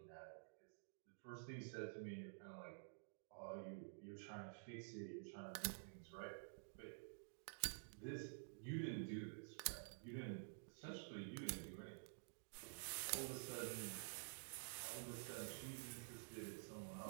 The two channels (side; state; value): left; silent; digital silence